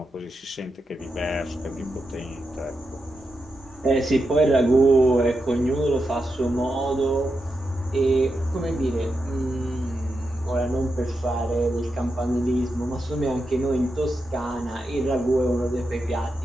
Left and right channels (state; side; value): normal; both; correlation 0.87